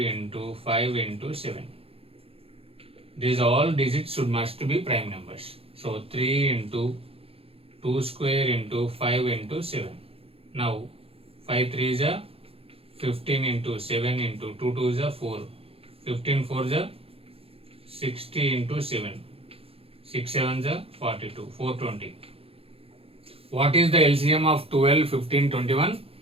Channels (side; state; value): left; late; 0.28 ms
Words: 5 into 7. These all digits must be prime numbers. So 3 into 2 square into 5 into 7. Now 5 3s are 15 into 7 into 2 2s are 4. 15 4s are 60 into 7. 6 7s are 42. 420. What is the LCM of 12, 15, 21?